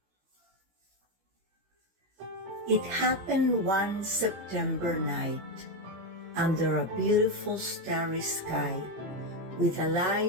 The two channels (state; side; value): late; left; 16 ms